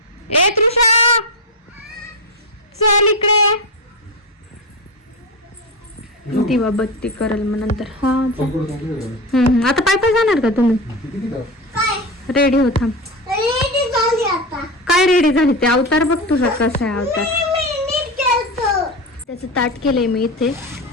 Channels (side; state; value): both; normal; correlation 0.19